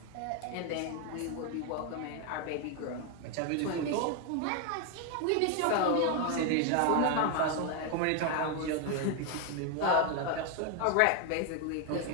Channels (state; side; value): different; both; correlation 0.01